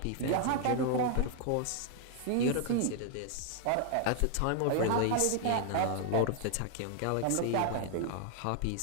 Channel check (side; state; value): both; different; correlation 0.00